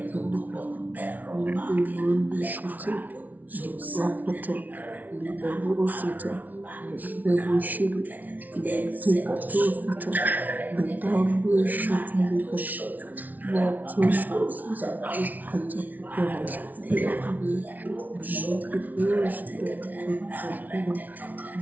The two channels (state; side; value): late; left; 0.077 ms